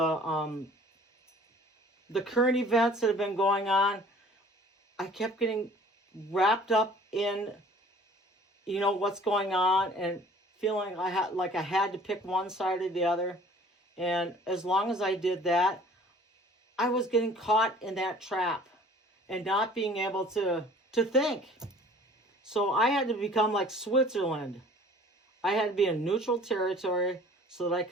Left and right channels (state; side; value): normal; both; correlation 0.50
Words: current events that have been going on, I kept getting wrapped up in, what's going on and feeling I had to pick one side or the other. And as long as I did that, I was getting caught in that trap and not being able to think. So I had to become like Switzerland. I had to be in neutral territory so that I